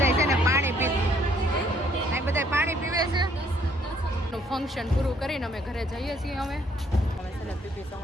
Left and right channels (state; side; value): normal; both; correlation 0.65